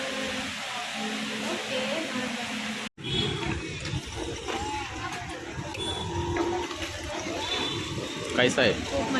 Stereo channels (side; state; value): both; identical; correlation 1.00